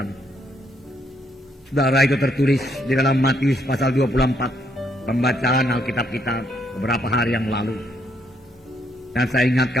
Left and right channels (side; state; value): both; normal; correlation 0.73